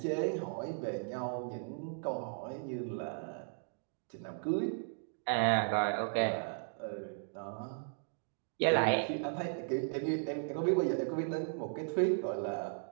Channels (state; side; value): silent; left; digital silence